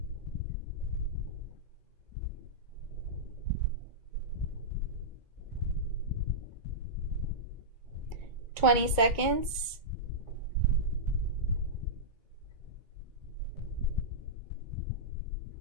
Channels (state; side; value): late; left; 2.2 ms